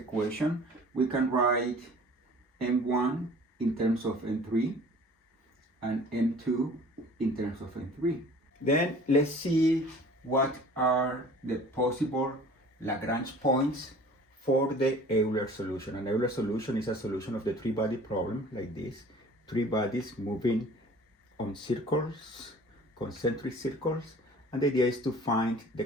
we can write M1 in terms of M3 and M2 in terms of M3. Then let's see what are the possible Lagrange points for the Euler solution. An Euler solution is a solution of the three-body problem like this. Three bodies moving on circles, concentric circles. And the idea is to find the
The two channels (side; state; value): both; normal; correlation 0.47